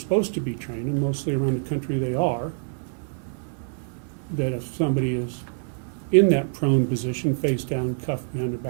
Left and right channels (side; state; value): left; silent; 61 dB below the other